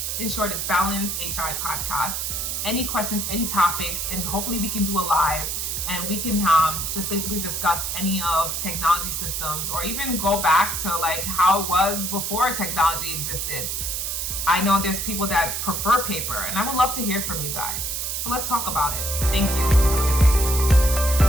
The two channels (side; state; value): right; noise; hiss, 2 dB below the sound